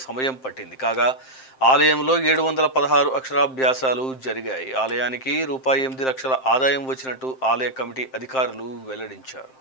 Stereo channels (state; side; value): late; right; 7.6 ms